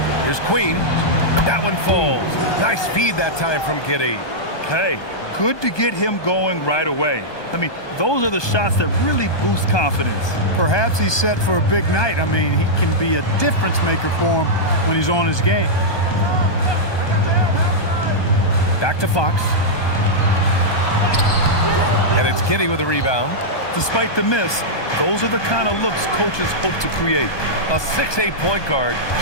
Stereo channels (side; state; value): right; late; 1.2 ms